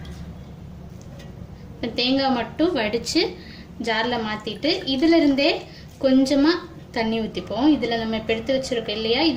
தேங்காய் மட்டும் வடிச்சு ஜார்ல மாத்திட்டு இதில இருந்தே கொஞ்சமா தண்ணி ஊத்திப்போம் இதுல நம்ம இப்ப எடுத்து வச்சிருக்கோம் இல்லையா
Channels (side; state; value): both; identical; correlation 1.00